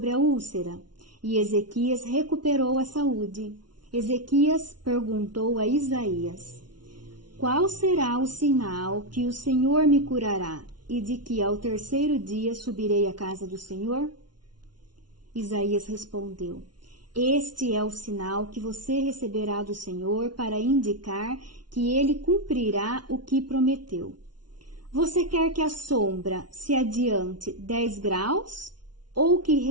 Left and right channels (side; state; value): left; late; 0.70 ms